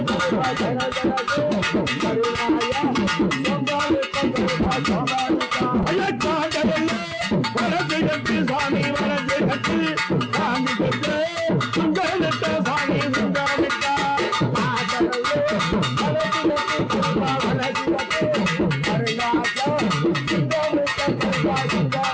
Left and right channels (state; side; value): identical; both; correlation 1.00